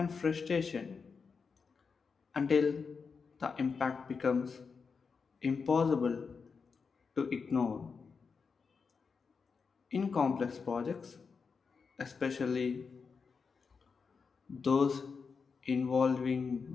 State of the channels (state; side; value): quieter; right; 5.3 dB